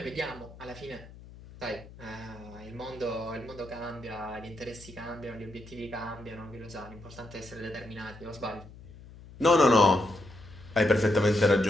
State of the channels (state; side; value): noise; left; hum, 18 dB below the sound